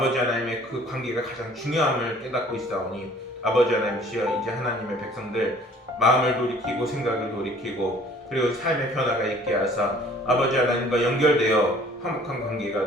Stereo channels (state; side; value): normal; both; correlation 0.53